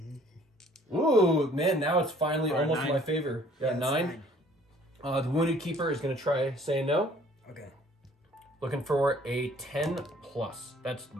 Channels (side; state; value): both; normal; correlation 0.56